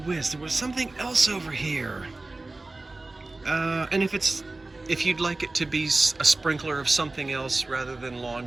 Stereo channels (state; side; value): quieter; left; 3.1 dB